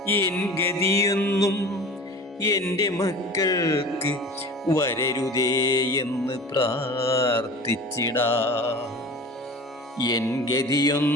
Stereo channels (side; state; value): both; normal; correlation 0.38